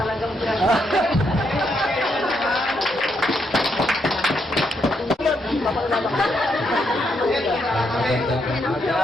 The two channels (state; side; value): normal; both; correlation 0.78